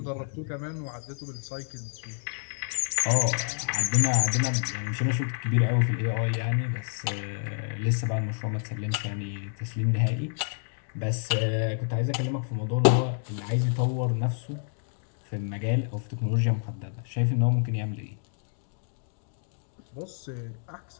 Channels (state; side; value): silent; right; digital silence